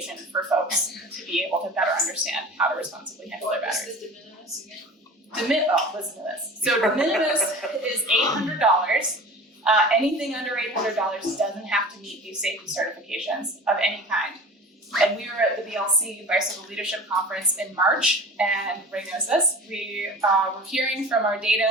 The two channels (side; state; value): both; normal; correlation 0.38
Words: for folks to be able to better understand how to responsibly handle their batteries. What's the de minimis again? Listen to this. So de minimis is $800. Anything under $800 doesn't have to meet these safety certifications of any kind. And we were at the BLC Bicycle Leadership Conference in March, and Ray knows this. We were hearing from our